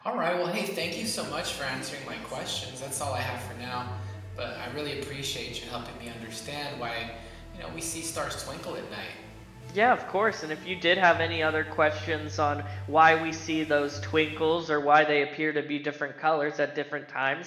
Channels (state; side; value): identical; both; correlation 1.00